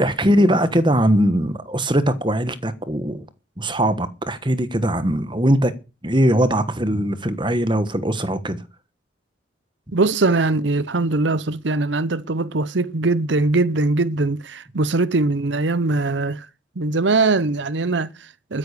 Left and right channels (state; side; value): normal; both; correlation 0.56